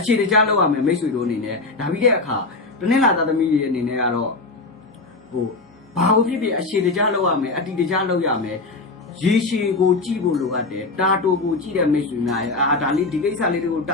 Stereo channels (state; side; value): quieter; right; 3.5 dB